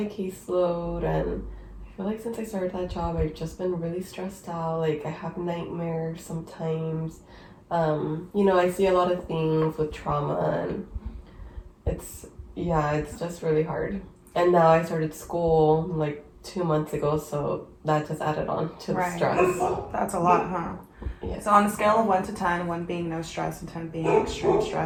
caseload. And I feel like since I started that job, I've just been really stressed out. Like, I have nightmares sometimes. I see a lot of things with trauma, and it's just really hard. And now I started school like 2 months ago, so that just added on to the stress. That's a lot, huh? Yes. So on a scale of 1 to 10, 1 being no stress and 10 being extreme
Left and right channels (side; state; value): both; identical; correlation 1.00